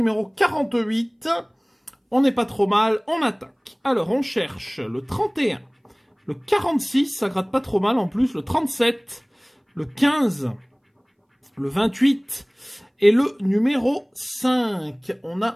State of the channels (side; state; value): both; identical; correlation 1.00